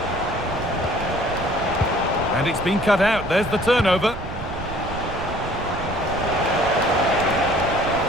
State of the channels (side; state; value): right; noise; rumble, 9 dB below the sound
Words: And it's been cut out. There's the turnover.